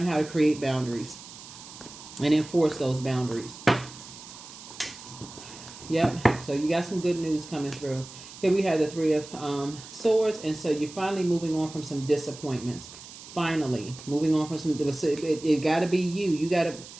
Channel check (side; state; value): right; noise; hiss, 16 dB below the sound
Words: how to create boundaries and enforce those boundaries. Yep. So you got some good news coming through. Here we have the Three of Swords. And so you're finally moving on from some disappointments. Finally. Moving on from some... It got to be you. You got